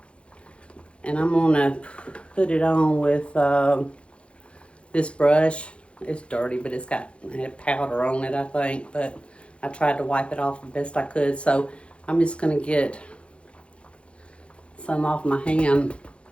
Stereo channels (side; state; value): right; late; 0.059 ms